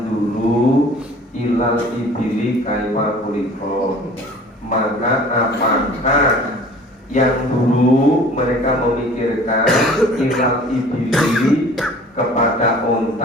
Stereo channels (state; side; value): normal; both; correlation 0.47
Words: dulu ilal ibili kaifa kuliko. Maka apakah yang dulu mereka memikirkan ilal ibili kepada